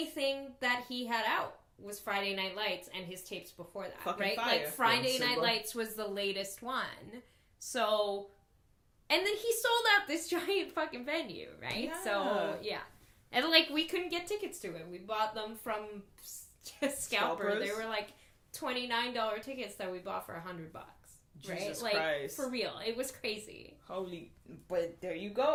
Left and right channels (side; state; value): both; identical; correlation 1.00